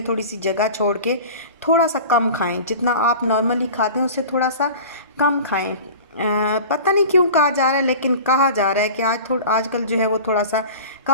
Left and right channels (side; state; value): both; inverted; correlation -0.38